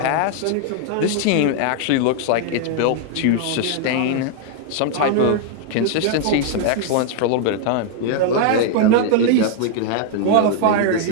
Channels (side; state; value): both; different; correlation 0.00